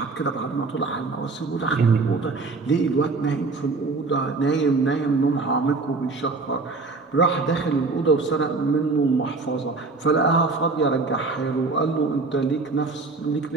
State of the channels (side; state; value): left; quieter; 3.9 dB